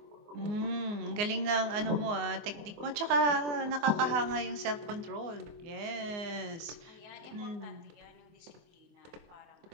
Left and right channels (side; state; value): left; late; 24 ms